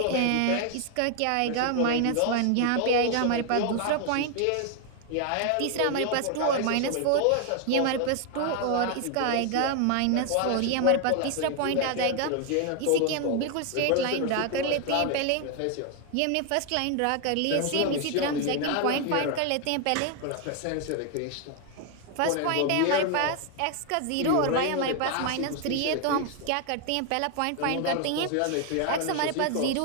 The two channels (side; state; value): both; different; correlation 0.01